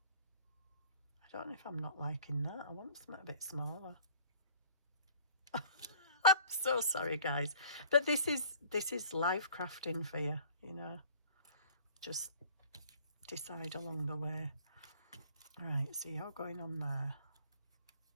don't know if I'm not liking that. I want something a bit smaller. I'm so sorry, guys, but this is life crafting for you, you know. Just decide along the way. All right, so you're going on there.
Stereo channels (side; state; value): both; inverted; correlation -0.52